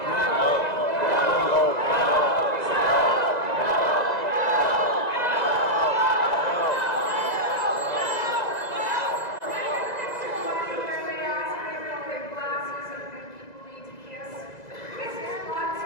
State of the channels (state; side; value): late; right; 2.0 ms